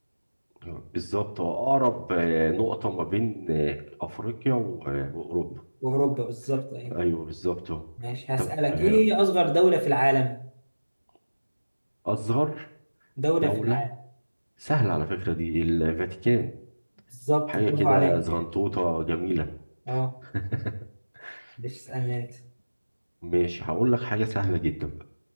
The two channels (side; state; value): both; inverted; correlation -1.00